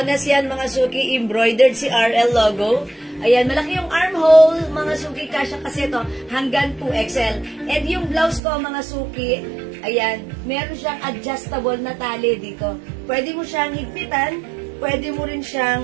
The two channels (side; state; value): left; drops out; at 8.4 s